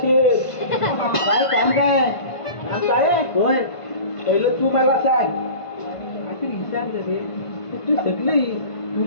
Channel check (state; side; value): late; right; 1.5 ms